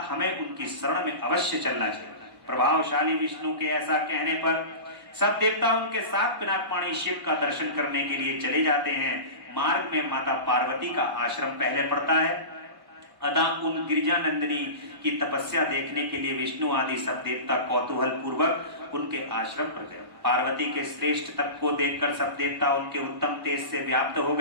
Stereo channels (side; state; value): left; late; 1.1 ms